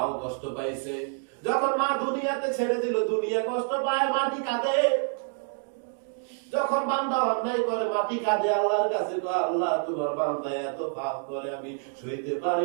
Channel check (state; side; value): silent; left; 60 dB below the other